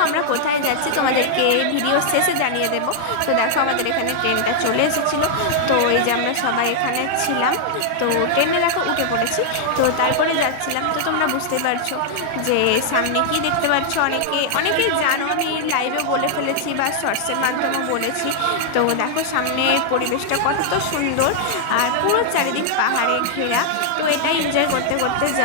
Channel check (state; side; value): different; both; correlation -0.01